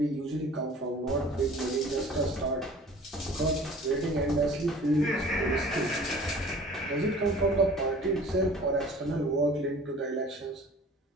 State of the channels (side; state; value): both; normal; correlation 0.47